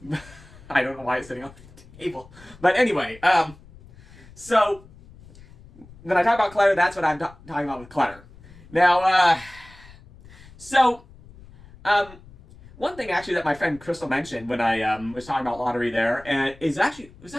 I don't know why it's sitting on the table, but anyway, so when I talk about clutter, that's what I'm talking about with clutter. Now, one thing actually that my friend Crystal mentioned when I was talking about lottery there, and was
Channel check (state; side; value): noise; left; rumble, 22 dB below the sound